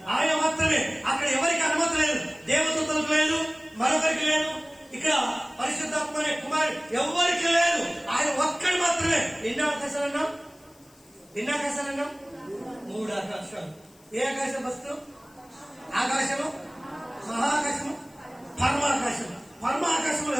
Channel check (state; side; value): noise; left; hiss, 28 dB below the sound